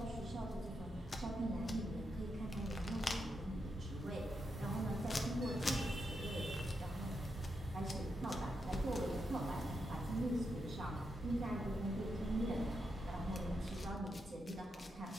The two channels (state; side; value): normal; both; correlation 0.84